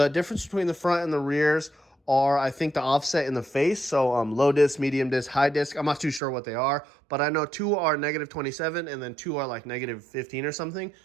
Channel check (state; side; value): drops out; left; at 6.2 s